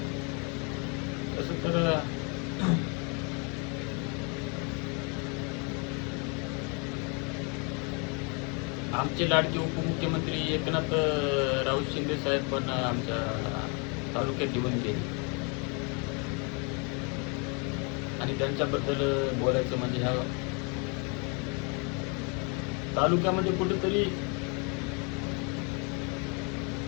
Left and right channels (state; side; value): quieter; right; 34.1 dB